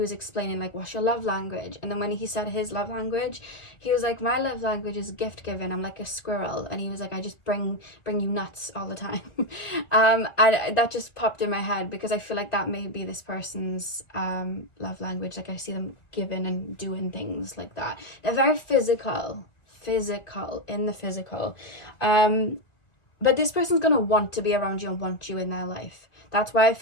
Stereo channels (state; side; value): late; right; 1.9 ms